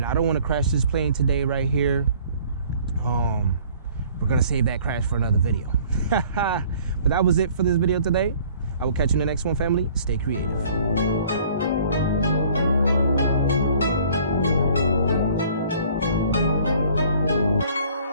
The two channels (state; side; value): inverted; both; correlation -0.54